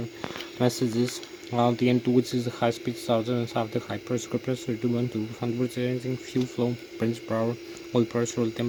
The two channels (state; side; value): identical; both; correlation 1.00